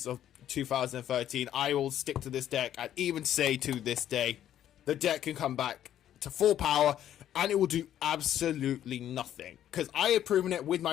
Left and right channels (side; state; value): right; quieter; 11.2 dB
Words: of 2013, I will stick to this deck and even say to this day, the deck can come back to full power and it will do absolutely nothing. Because I have proven it with